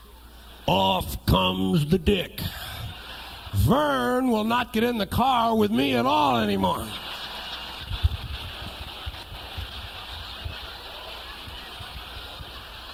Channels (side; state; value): both; identical; correlation 1.00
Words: Off comes the dick. Vern will not get in the car with me at all anymore.